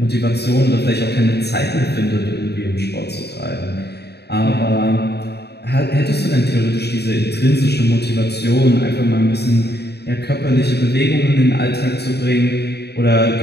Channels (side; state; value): right; late; 0.48 ms